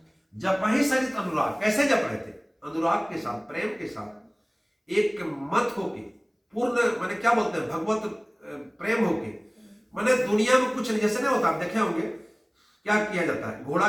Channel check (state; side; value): identical; both; correlation 1.00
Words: जपहि सहित अनुराग। कैसे जप रहे थे? अनुराग के साथ, प्रेम के साथ, एक मत होके, पूर्ण माने क्या बोलते हैं, भगवत प्रेम होके। माने दुनिया में कुछ नहीं, जैसे नहीं होता, आप देखे होंगे क्या किया जाता है, घोड़ा